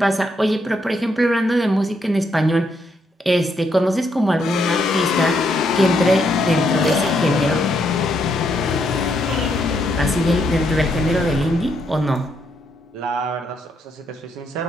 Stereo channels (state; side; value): normal; both; correlation 0.76